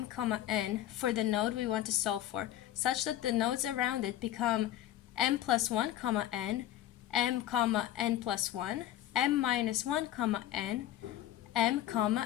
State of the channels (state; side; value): quieter; right; 12.8 dB